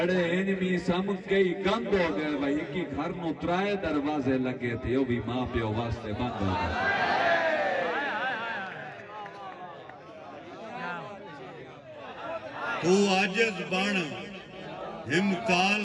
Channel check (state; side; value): identical; both; correlation 1.00